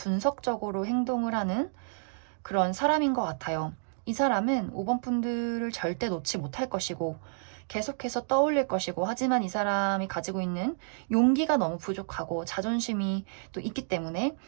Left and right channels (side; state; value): left; silent; digital silence